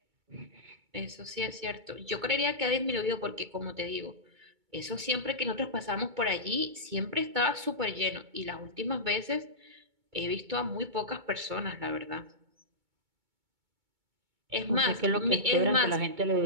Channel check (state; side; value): late; left; 2.2 ms